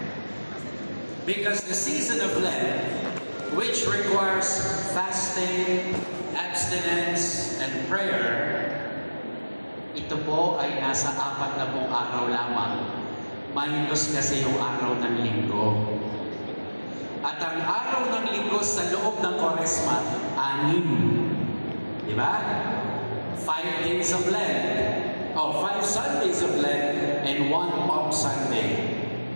Because the season of Lent, which requires fasting, abstinence, and prayer, ito po ay nasa 40 araw lamang. Minus kasi yung araw ng linggo. At ang araw ng linggo sa loob ng Kwaresma, 6. Diba? 5 days of Lent. O 5 Sundays of Lent and 1 Palm Sunday.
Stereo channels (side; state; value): both; inverted; correlation -1.00